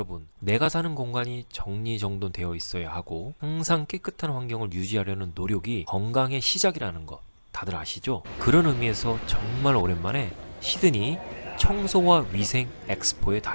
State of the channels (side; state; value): both; inverted; correlation -1.00